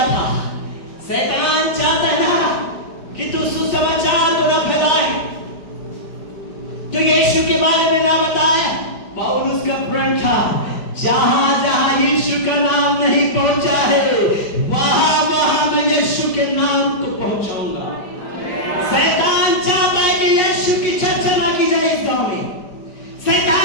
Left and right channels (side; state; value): right; late; 5.0 ms